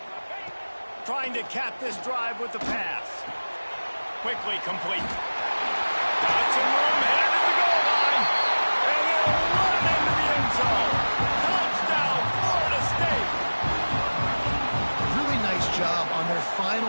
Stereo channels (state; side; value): inverted; both; correlation -1.00